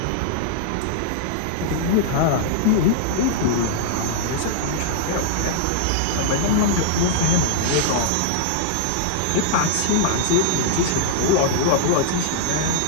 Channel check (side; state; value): both; different; correlation -0.01